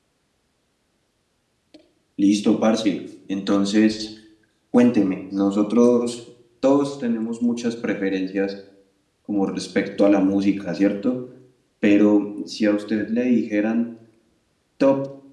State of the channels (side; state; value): both; identical; correlation 1.00